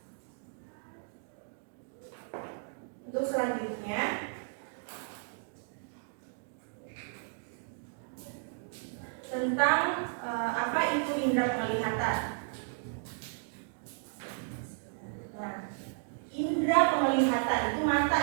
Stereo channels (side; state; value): left; silent; digital silence